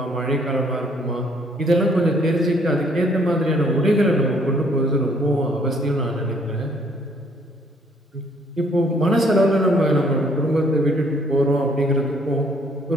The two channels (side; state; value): both; normal; correlation 0.64